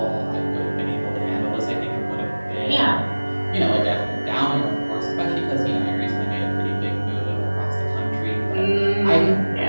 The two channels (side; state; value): both; inverted; correlation -1.00